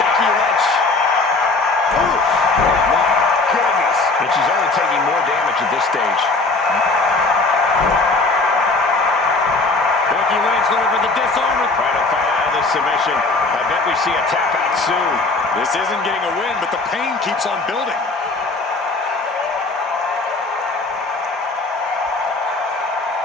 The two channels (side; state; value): right; quieter; 3.5 dB